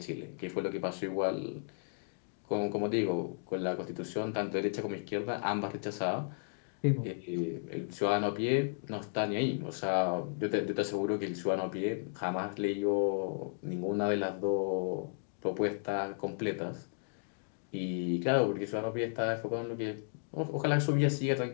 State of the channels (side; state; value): right; silent; digital silence